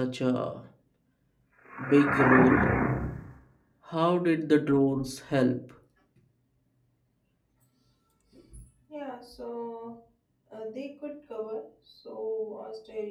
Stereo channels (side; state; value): both; identical; correlation 1.00